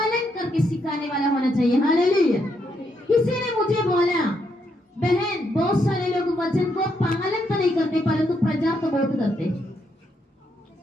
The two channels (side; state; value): both; normal; correlation 0.77